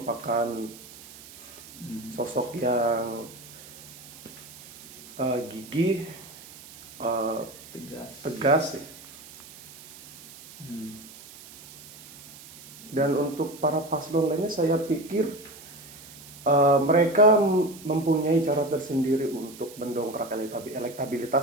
sosok yang gigih, tegas. Dan untuk para paslon lainnya saya pikir mereka mempunyai cara tersendiri untuk mendongkrak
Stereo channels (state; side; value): noise; right; hiss, 18 dB below the sound